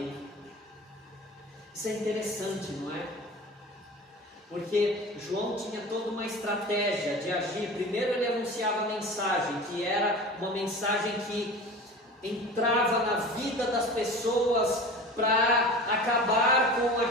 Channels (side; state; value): both; normal; correlation 0.36